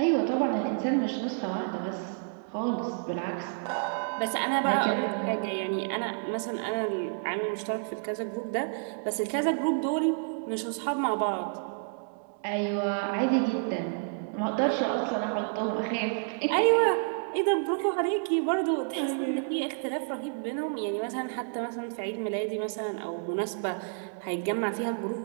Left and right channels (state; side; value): silent; left; digital silence